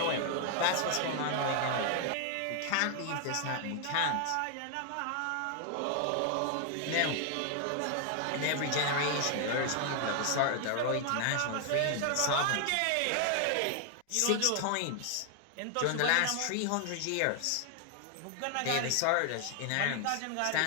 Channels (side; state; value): both; different; correlation 0.00